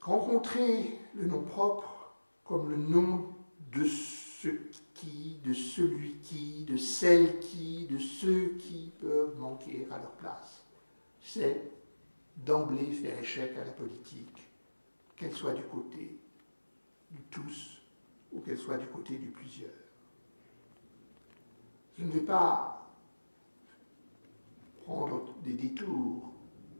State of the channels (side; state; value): both; inverted; correlation -1.00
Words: le nom propre comme le nom de ce qui, de celui qui, de celle qui, de ceux qui peuvent manquer à leur place, c'est d'emblée faire échec à la politique, qu'elle soit du côté du tous ou qu'elle soit du côté du plusieurs. Je ne vais pas prendre des détours.